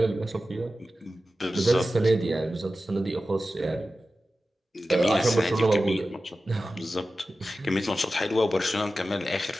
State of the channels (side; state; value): both; normal; correlation 0.94